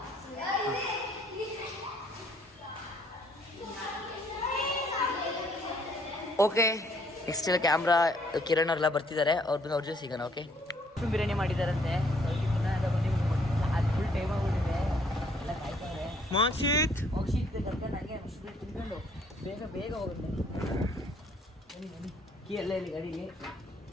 ಓಕೆ, ನೆಕ್ಸ್ಟ್ ಎಲ್ಲ ಕ್ಯಾಮ್ರಾ ಕಿರಣ್ ಅವರೆಲ್ಲ ಬರ್ತಿದ್ದಾರೆ. ಅವ್ರ ಜೊತೆ ಸಿಗೋಣ. ಓಕೆ, ಬಿರಿಯಾನಿ ಮಾಡಿದಾರಂತೆ. ಅದು ಫುಲ್ ಟೈಮ್ ಆಗ್ಬಿಟ್ಟಿದೆ. ಎಲ್ಲ ಕಾಯ್ತಾರೆ. ಮೋಕ್ಷಿತ್ ಕರ್ಕೊಂಡು ನನಗೆ ತಿನ್ಕೊಂಡು ಬೇಗ ಹೋಗುತ್ತೆ. ಬನ್ನಿ ಕೀ ಎಲ್ಲ ಇಲ್ಲಿ ಗಾಡಿಗೆ.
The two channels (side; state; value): both; normal; correlation 0.64